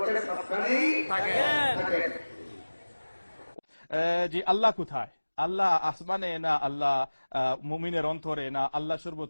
সবখানেই থাকেন। জি, আল্লাহ কোথায়? আল্লাহ আসমানে না আল্লাহ মুমিনের অন্তরে না আল্লাহ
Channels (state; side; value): inverted; both; correlation -1.00